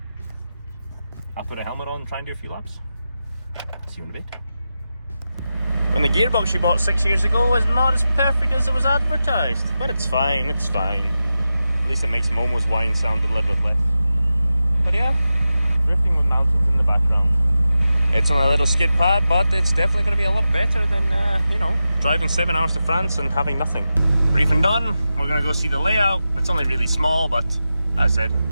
I'll put a helmet on and try and do a few laps. See you in a bit. When the gearbox you bought 6 years ago was not as perfect as it was advertised, but it's fine, it's fine. At least it makes Momo's whine sound a little bit less. But yeah, drifting with mountains in the background. It's on a little skid pad, but it's definitely going to be a lot better than, you know, driving 7 hours to France and having nothing. Briefing done, we're going to go see the layout. It's only really small, but as I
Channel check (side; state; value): both; inverted; correlation -0.91